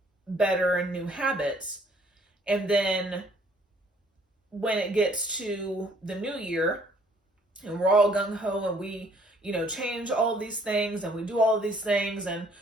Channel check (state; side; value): normal; both; correlation 0.62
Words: better and new habits. And then when it gets to the new year and we're all gung-ho and we, change all of these things and we do all of these things and